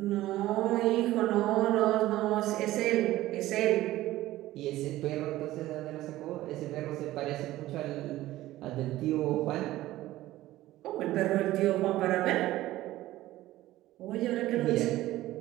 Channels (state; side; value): quieter; left; 15.9 dB